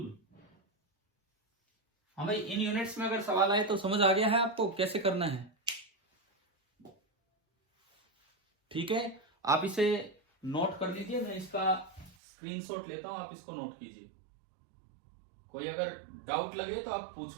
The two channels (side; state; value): left; drops out; at 12.2 s